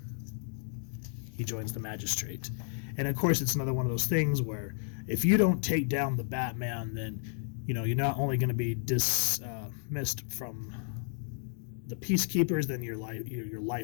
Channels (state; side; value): silent; right; digital silence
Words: He joins the Magistrate. And of course, it's another one of those things where if you don't take down the Batman, then, you're not only going to be dismissed from the Peacekeepers, then your